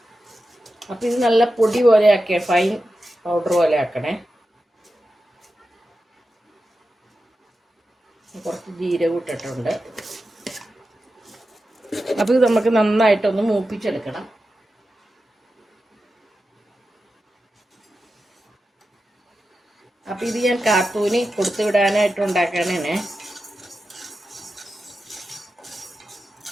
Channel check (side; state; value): both; normal; correlation 0.91